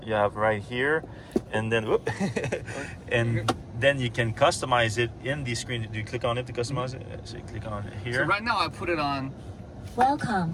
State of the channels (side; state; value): both; identical; correlation 1.00